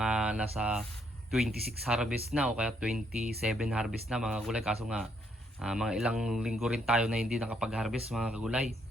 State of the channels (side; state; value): both; normal; correlation 0.72